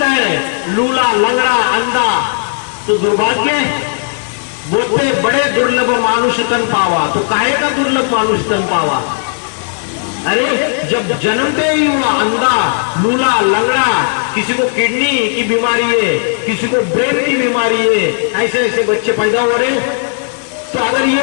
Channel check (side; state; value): right; silent; digital silence